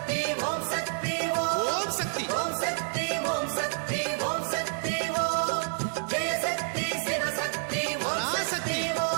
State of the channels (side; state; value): left; silent; 59 dB below the other